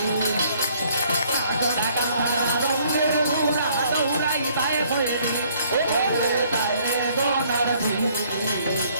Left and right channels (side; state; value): both; inverted; correlation -0.62